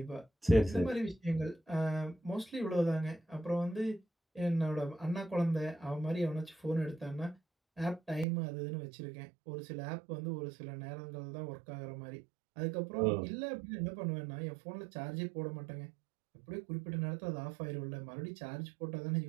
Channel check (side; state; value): left; drops out; at 8.2 s